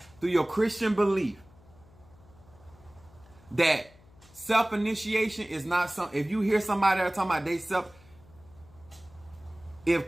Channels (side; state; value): left; noise; hum, 26 dB below the sound